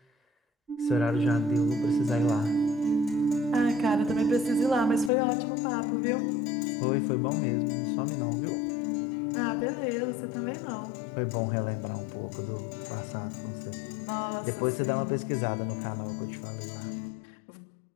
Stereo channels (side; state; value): right; drops out; at 5.1 s